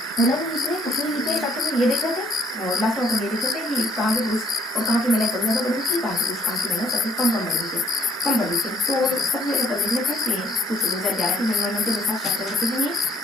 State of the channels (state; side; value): normal; both; correlation 0.65